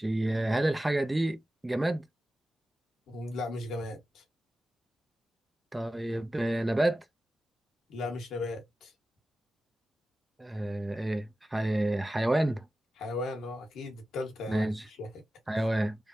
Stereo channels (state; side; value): normal; both; correlation 0.94